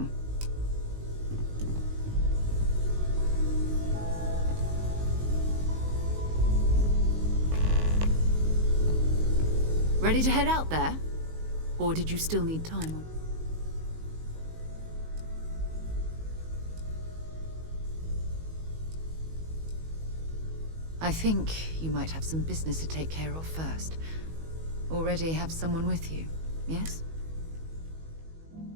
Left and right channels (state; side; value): late; left; 19 ms